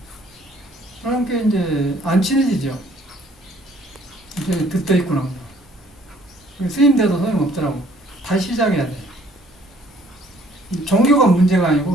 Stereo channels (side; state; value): both; normal; correlation 0.60